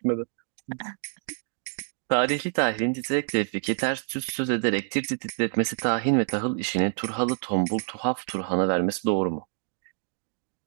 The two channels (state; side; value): silent; left; digital silence